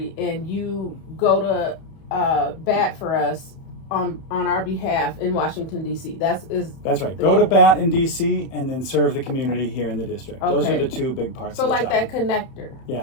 and you go to bat for us on our behalf in Washington, D.C. That's right. Go to bat in D.C. and then serve the community here in the district. Okay. Those are the two big parts So of the like job. that connector.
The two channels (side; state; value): right; late; 31 ms